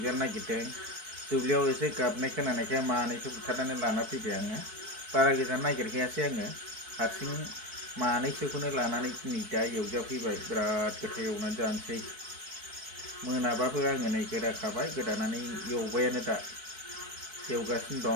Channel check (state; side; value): late; left; 4.6 ms